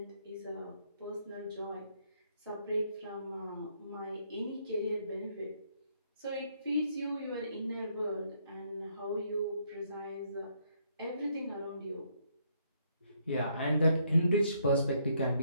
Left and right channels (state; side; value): inverted; both; correlation -0.71